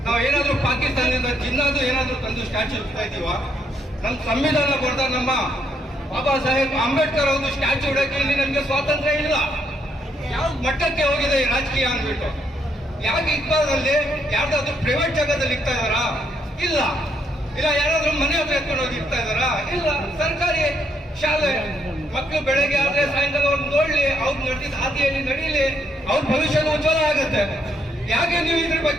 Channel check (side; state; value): both; normal; correlation 0.74